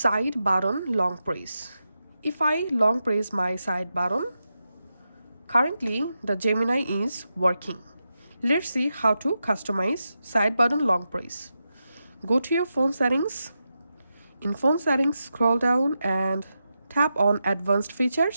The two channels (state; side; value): inverted; both; correlation -0.88